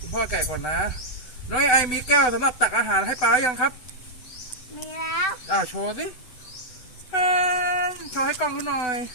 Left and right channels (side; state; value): right; late; 7.9 ms